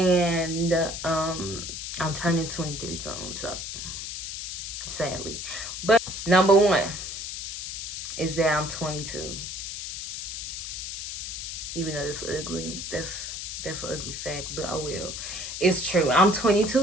I'm turning 23 soon, so sadly. But number one is that I'm 22. Even though it's ugly, that's an ugly fact, but oh well. It's true. I'm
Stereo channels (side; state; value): left; noise; hiss, 6 dB below the sound